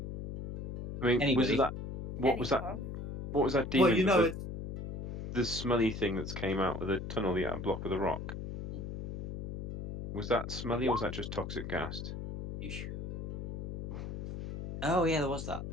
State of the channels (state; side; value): noise; left; hum, 7 dB below the sound